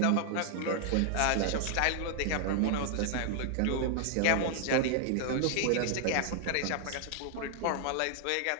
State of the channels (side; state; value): both; different; correlation -0.01